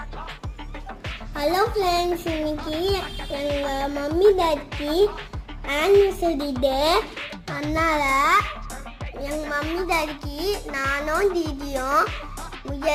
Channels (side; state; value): both; identical; correlation 1.00